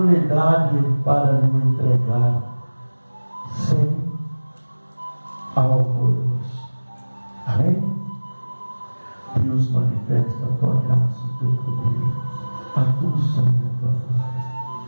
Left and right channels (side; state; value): both; inverted; correlation -1.00